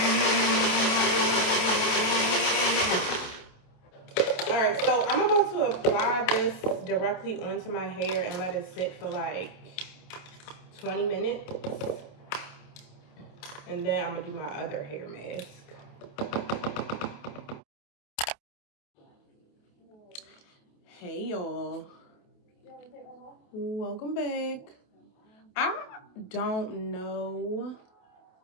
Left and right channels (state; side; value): late; right; 28 ms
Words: Alright, so I'm about to apply this directly onto my hair and let it sit for like 20 minutes. And then I'm gonna do my other hair mask. Hey y'all. Welcome back. I don't know